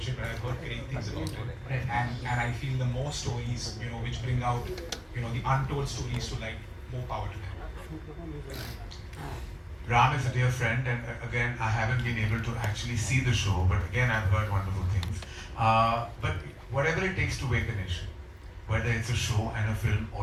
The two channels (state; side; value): identical; both; correlation 1.00